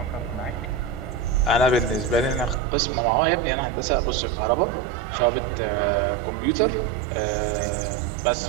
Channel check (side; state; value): left; drops out; at 2.6 s